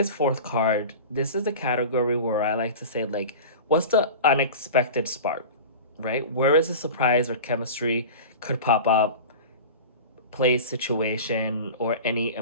fourth card, this is the category where I like to say, like, what's the unexpected spark, right? Where is a surprise or chemistry could pop up, place, situation, or any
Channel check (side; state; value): both; inverted; correlation -0.33